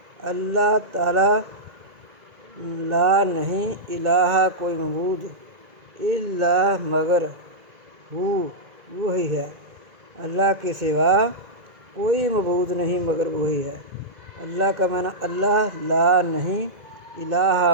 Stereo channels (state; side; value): late; left; 2.0 ms